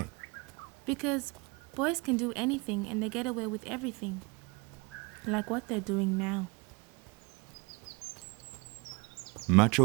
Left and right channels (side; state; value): left; quieter; 27.6 dB